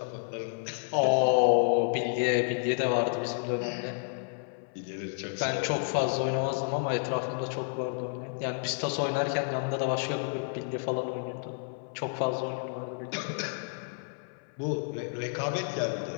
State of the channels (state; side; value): silent; right; 57 dB below the other